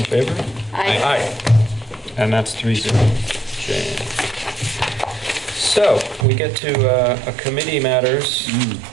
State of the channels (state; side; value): drops out; left; at 6.2 s